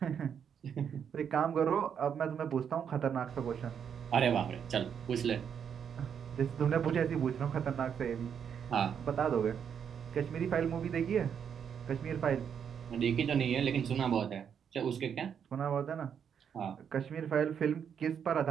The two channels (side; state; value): left; quieter; 7.8 dB